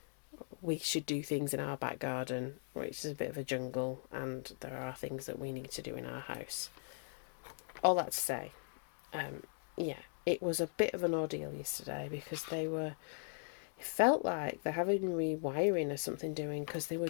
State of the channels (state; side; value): silent; right; digital silence